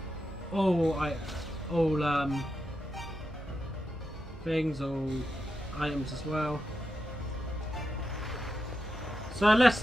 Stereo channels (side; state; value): both; normal; correlation 0.88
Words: all things, all items as well. So let's